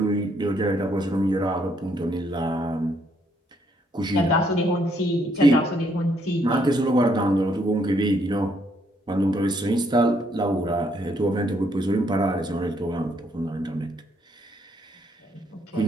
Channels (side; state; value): both; normal; correlation 0.71